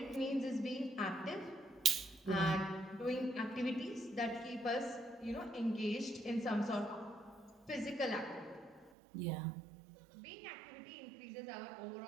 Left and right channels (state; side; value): drops out; left; at 8.9 s